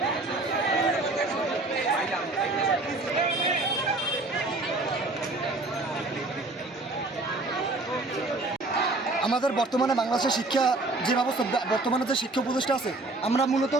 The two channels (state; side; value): quieter; left; 3.0 dB